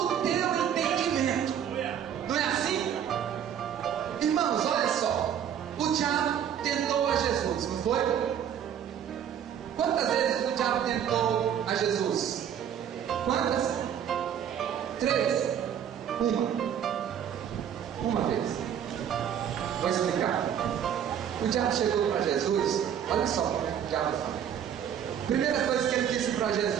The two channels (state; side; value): quieter; left; 9.1 dB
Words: o teu entendimento. Não é assim? Irmãos, olha só. O diabo tentou a Jesus, não foi? Quantas vezes o diabo tentou a Jesus? Quantas? 3. Uma vez. Vou explicar. O diabo chegou para Jesus. Olha só como é que o diabo fala. Primeira coisa que ele disse para